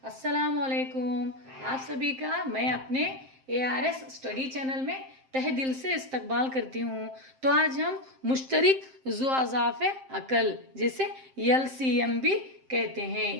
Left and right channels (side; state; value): left; late; 7.6 ms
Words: अस्सलाम वालेकुम। आप सभी का मैं अपने ARS स्टडी चैनल में तहे दिल से इस्तकबाल करती हूँ। तो आज हम मुश्तरिक ज़ुआज़ाफ़ अकल जिसे LCM भी कहते